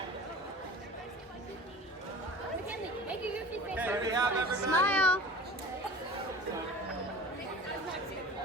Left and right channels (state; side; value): normal; both; correlation 0.39